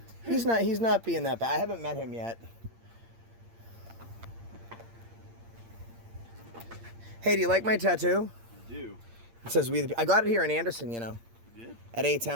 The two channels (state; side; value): late; left; 8.7 ms